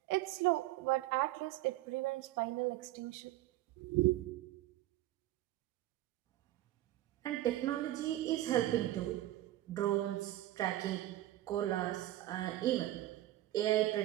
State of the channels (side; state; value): left; quieter; 15.2 dB